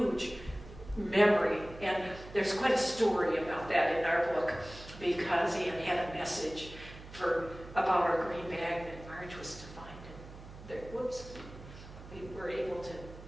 memory, and there's quite a story about that in our book, because Anne had a message about our green bag that Marge was to find. And we were able to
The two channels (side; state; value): right; noise; hum, 16 dB below the sound